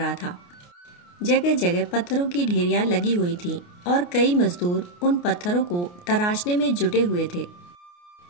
था। जगह जगह पत्थरों की ढेरियां लगी हुई थीं और कई मजदूर उन पत्थरों को तराशने में जुटे हुए थे।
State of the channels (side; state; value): right; late; 28 ms